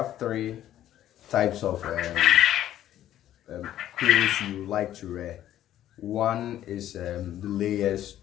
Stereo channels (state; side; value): quieter; right; 12.2 dB